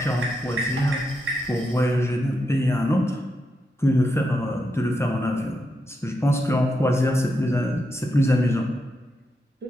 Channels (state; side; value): normal; both; correlation 0.84